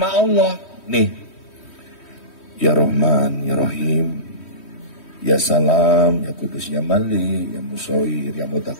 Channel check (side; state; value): right; late; 3.1 ms